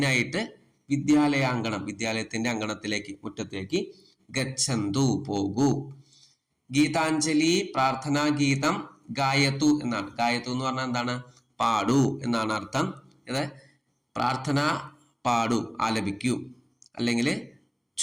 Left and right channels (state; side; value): identical; both; correlation 1.00